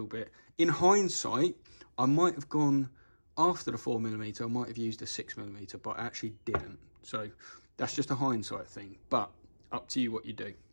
bit. In hindsight, I might have gone after the 4mm, I might have used a 6mm, but I actually didn't. So that's just a hindsight thing, but up to you what you do.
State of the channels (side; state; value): both; inverted; correlation -1.00